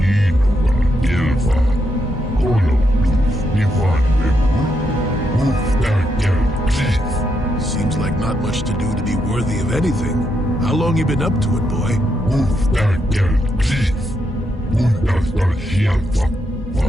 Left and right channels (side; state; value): both; normal; correlation 0.80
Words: Gelfa. Kolo Duf Nivan Bebu. Seems like not much to do to be worthy of anything. How long you been up to it, boy?